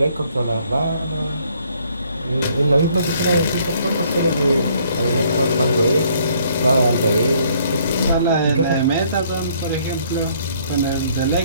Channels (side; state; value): both; inverted; correlation -0.64